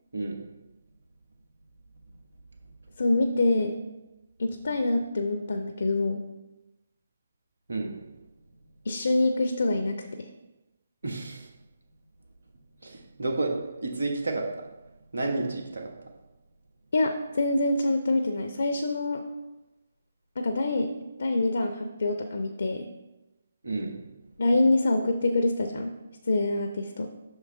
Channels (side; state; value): both; inverted; correlation -0.89